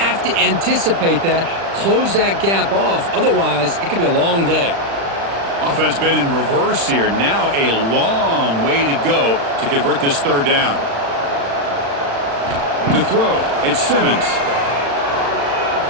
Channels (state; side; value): late; left; 35 ms